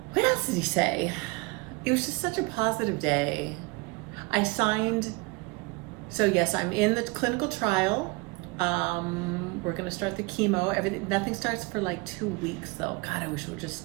What else did he say? It was just such a positive day. I signed, so yes, I'm in the clinical trial. We're gonna start the chemo. Nothing starts for like 2 weeks though. God, I wish we were just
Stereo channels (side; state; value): left; quieter; 26.7 dB